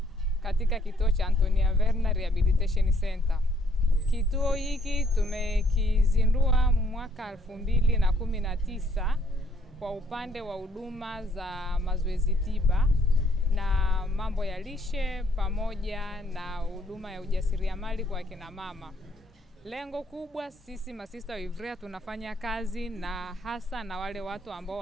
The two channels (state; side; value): normal; both; correlation 0.66